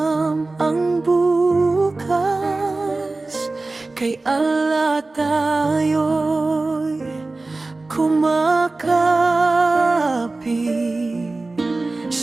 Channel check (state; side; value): quieter; left; 3.3 dB